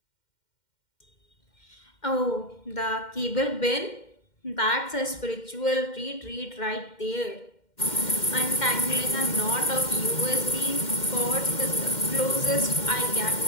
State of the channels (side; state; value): right; late; 2.1 ms